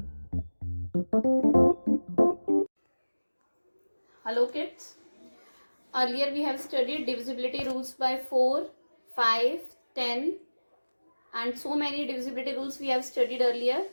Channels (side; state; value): both; inverted; correlation -1.00